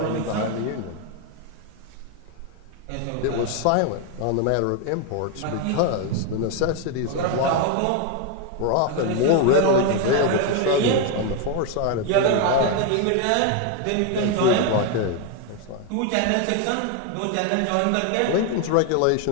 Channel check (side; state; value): both; different; correlation 0.01